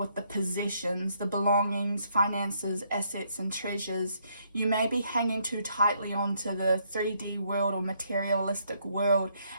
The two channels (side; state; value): both; inverted; correlation -0.72